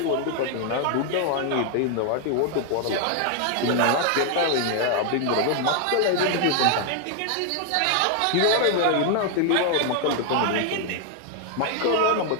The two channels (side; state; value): both; different; correlation 0.00